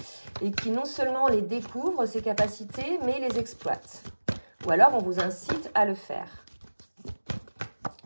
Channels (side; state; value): both; inverted; correlation -1.00